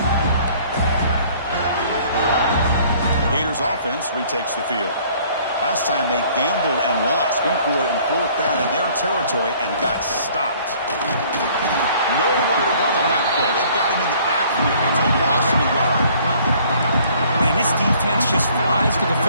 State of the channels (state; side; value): inverted; both; correlation -0.57